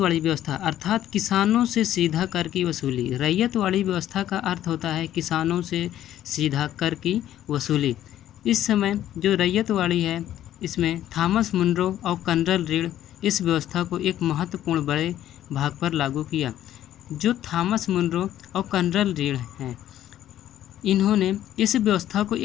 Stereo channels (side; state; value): right; quieter; 12.2 dB